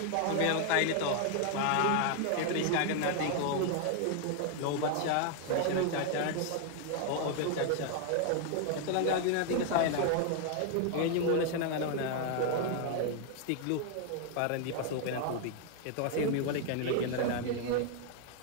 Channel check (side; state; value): both; different; correlation 0.00